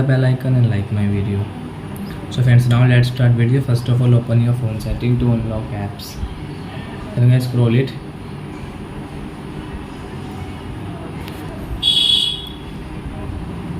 bell icon and like my video. So friends, now let's start video. First of all, open your phone setting to unlock apps. Then guys, scroll it.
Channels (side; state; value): both; identical; correlation 1.00